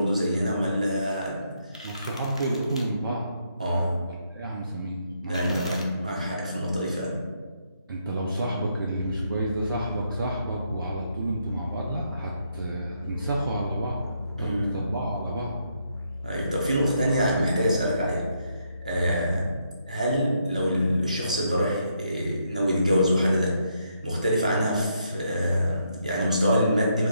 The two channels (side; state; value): both; inverted; correlation -0.76